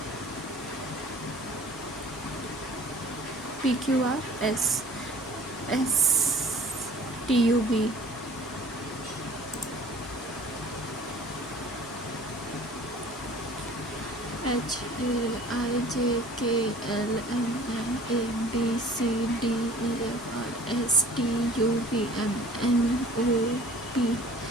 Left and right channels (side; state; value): both; normal; correlation 0.49